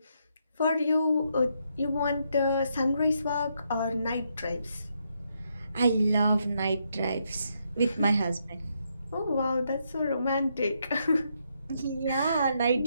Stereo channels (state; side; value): inverted; both; correlation -0.78